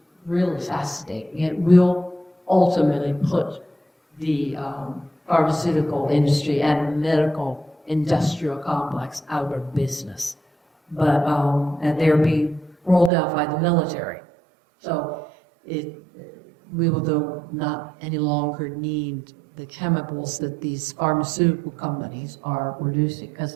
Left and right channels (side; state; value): left; drops out; at 13.1 s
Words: really fascinating. It will ultimately put the pharmaceutical industry and medical industrial complex out of business. But, and they're being rolled out by the military. So we will not any longer need the chemicals that these pharmaceutical companies are producing.